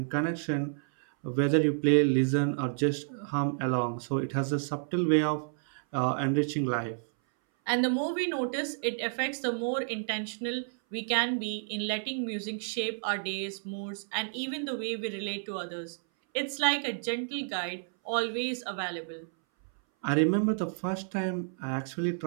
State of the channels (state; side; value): silent; left; 58 dB below the other